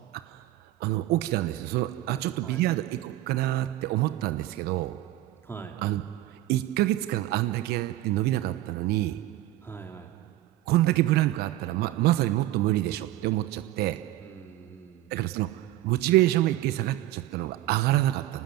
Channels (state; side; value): quieter; left; 15.1 dB